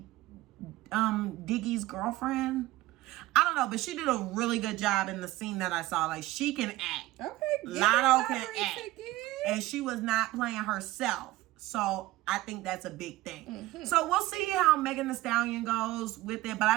Diggy's girlfriend. I don't know, but she did a really good job in the scene that I saw. Like, she can act. Okay. Lotto can act. And she was not playing herself. So I think that's a big thing. So we'll see how Megan Thee Stallion goes with it. But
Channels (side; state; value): left; quieter; 17.7 dB